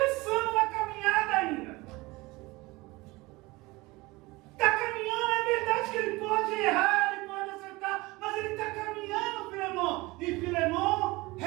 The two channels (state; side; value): quieter; left; 22.1 dB